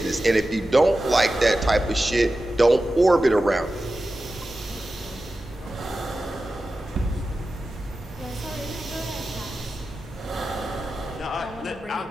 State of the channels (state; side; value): normal; both; correlation 0.93